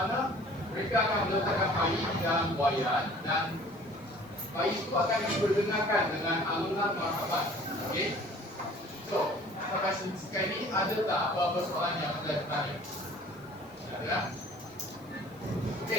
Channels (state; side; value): noise; left; hiss, 28 dB below the sound